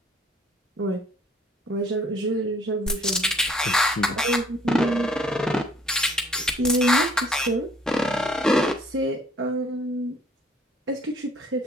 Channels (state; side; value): normal; both; correlation 0.59